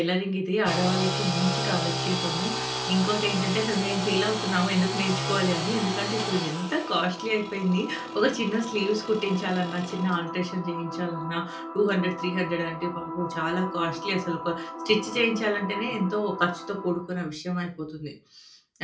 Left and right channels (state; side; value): identical; both; correlation 1.00